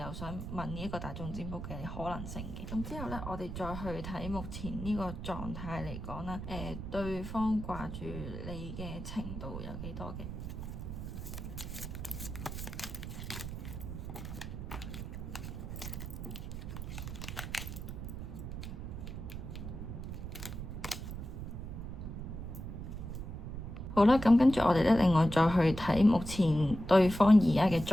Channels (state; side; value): noise; right; rumble, 7 dB below the sound